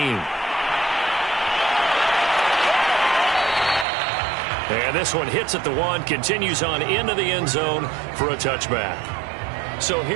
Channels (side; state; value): left; drops out; at 3.9 s